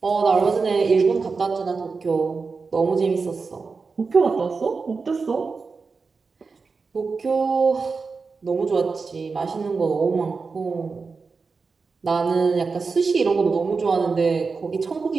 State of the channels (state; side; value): quieter; left; 4.6 dB